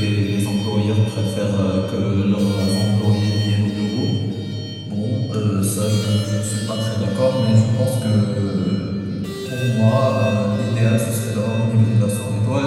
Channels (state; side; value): identical; both; correlation 1.00